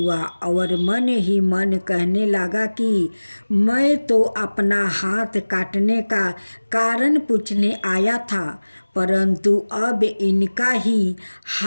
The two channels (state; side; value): inverted; both; correlation -1.00